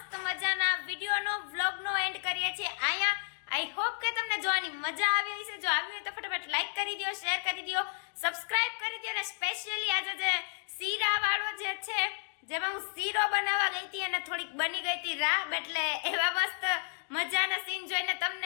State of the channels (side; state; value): right; silent; 56 dB below the other